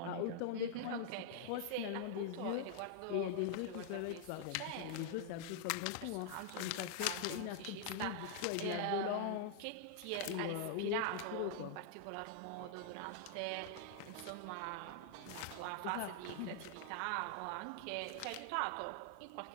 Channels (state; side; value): different; both; correlation 0.00